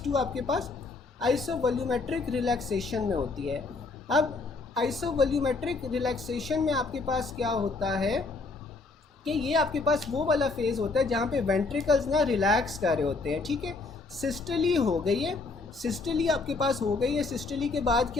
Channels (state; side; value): quieter; right; 3.8 dB